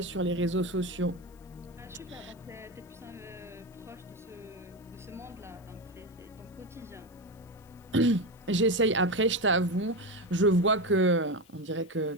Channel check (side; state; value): left; noise; hiss, 30 dB below the sound